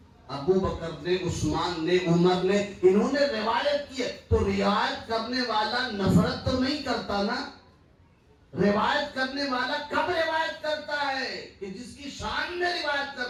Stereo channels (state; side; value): identical; both; correlation 1.00